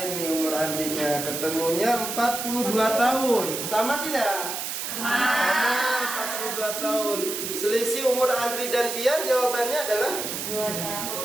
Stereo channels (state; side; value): noise; right; hiss, 4 dB below the sound